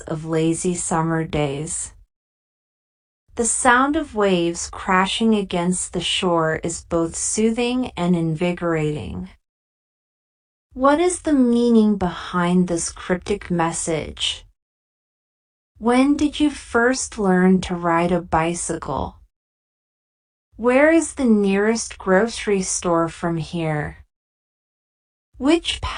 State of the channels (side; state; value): both; identical; correlation 1.00